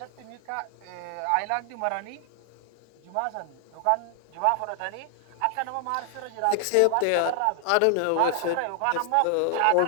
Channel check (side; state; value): both; different; correlation 0.00